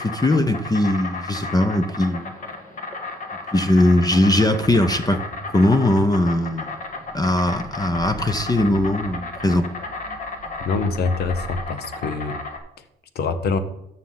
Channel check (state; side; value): normal; both; correlation 0.75